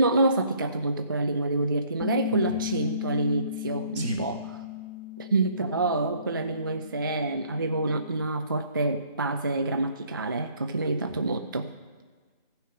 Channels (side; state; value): both; inverted; correlation -0.61